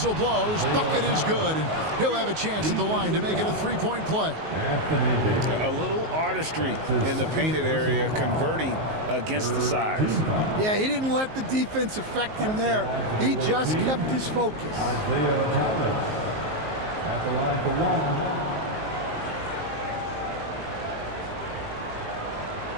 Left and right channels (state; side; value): late; left; 19 ms